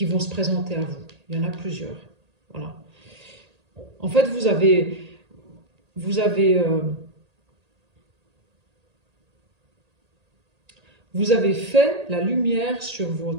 présenter à vous. Il y en a plusieurs. Voilà. En fait, vous avez fait la lumière sur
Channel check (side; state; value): left; late; 1.8 ms